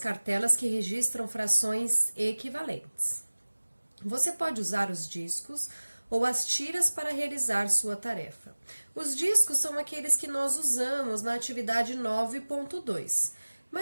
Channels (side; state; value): both; inverted; correlation -1.00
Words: que registram frações equivalentes. Você pode usar os discos ou as tiras para realizar sua tarefa. Os discos são aqueles que nós usamos na atividade 9.2,